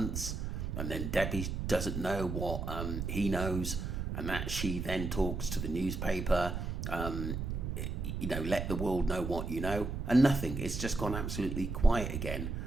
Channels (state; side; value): noise; right; rumble, 3 dB below the sound